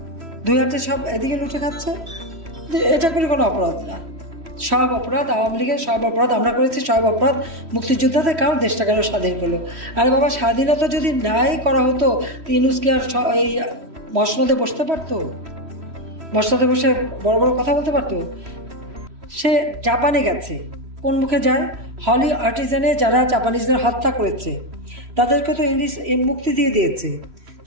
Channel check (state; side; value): late; left; 3.1 ms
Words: 2 হাতে সব এদিকে লুটে খাচ্ছে। এটা করে কোনো অপরাধ না, সব অপরাধ আওয়ামী লীগের, সব অপরাধ আমরা করেছি, সব অপরাধ মুক্তিযোদ্ধাদের। কারণ দেশটা কেন স্বাধীন করলো? আরে বাবা, স্বাধীনতা যদি নাই করা হতো, ইউনূস কি আর এই মসনদে বসতে পারতো? মসনদে বসে বড় বড় কথা বলতে পারতো? সে জাপানে গেছে, কোন মুখে যায়? হলি আর্টিজানে যারা জাপানিজদের হত্যা করেছে তাদেরকে তো মুক্তি দিয়ে দিয়েছে।